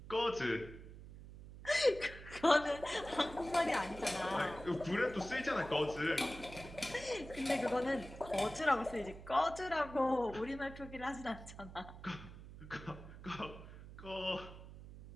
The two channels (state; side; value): noise; right; hum, 14 dB below the sound